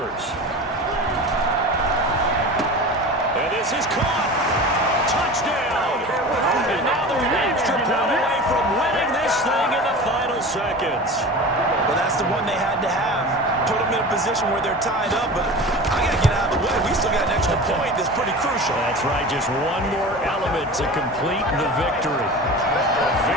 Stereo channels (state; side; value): normal; both; correlation 0.34